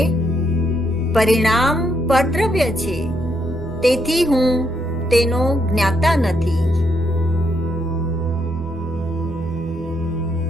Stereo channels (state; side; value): normal; both; correlation 0.76